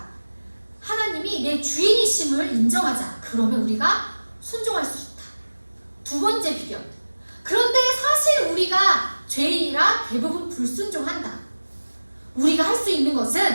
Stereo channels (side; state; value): both; inverted; correlation -1.00